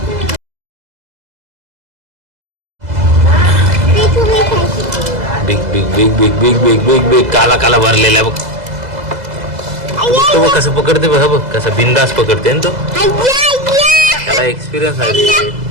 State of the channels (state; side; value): late; left; 2.0 ms